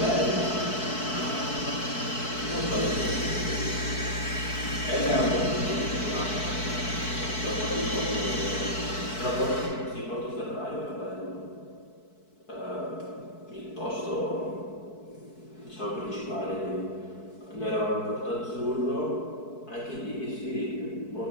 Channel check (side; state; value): right; late; 4.6 ms